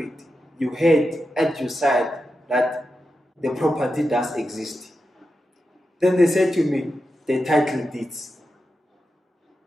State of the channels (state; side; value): normal; both; correlation 0.89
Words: you had at your side that the property does exist. Then they said to me, the title deeds.